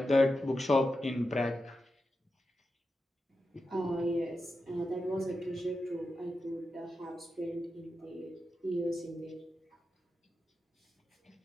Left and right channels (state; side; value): normal; both; correlation 0.90